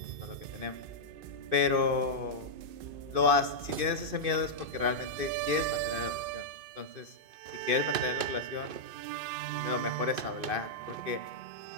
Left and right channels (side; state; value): left; late; 2.5 ms